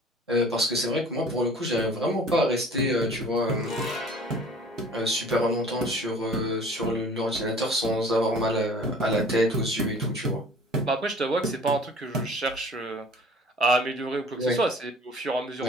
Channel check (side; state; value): both; normal; correlation 0.48